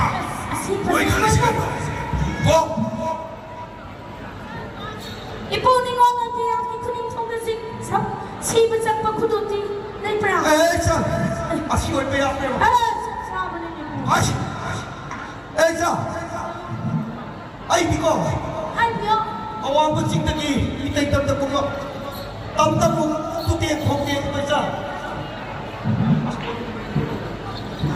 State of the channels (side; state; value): both; identical; correlation 1.00